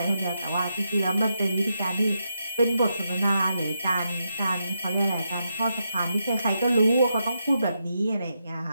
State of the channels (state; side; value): inverted; both; correlation -0.83